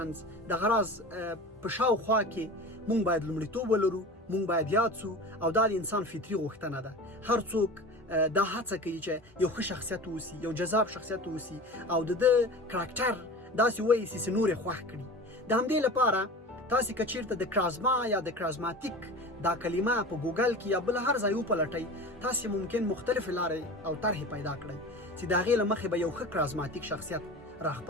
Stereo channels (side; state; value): both; normal; correlation 0.34